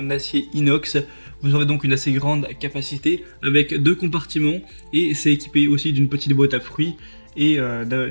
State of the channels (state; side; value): inverted; both; correlation -1.00